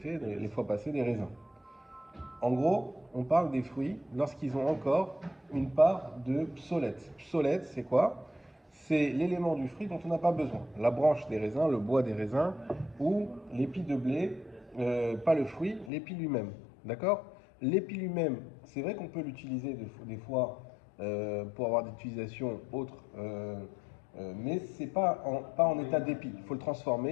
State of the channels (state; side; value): drops out; right; at 15.9 s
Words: les fois passées, des raisins. En gros, on parle des fruits lorsqu'ils ont encore une part de psolète. Psolète, c'est quoi? C'est l'élément du fruit dont on n'a pas besoin. La branche des raisins, le bois des raisins ou l'épi de blé, pas le fruit, l'épi lui-même. D'accord? L'épi lui-même, c'est vrai qu'on peut l'utiliser des fois pour avoir des utilisations autres, mais c'est pas en état d'épi. Il faut le